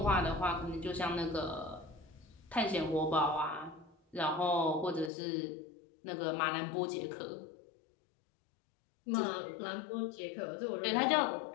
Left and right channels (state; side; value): drops out; right; at 5.1 s